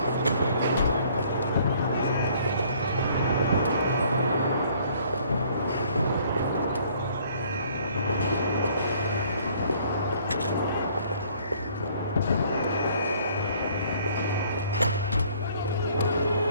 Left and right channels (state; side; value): inverted; both; correlation -0.59